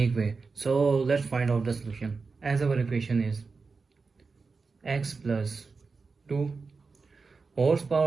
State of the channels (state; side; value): quieter; left; 4.5 dB